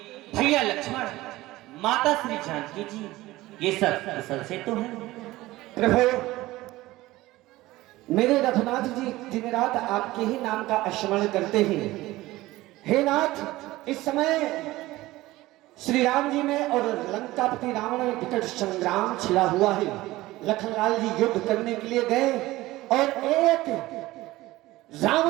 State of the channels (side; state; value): left; quieter; 18.0 dB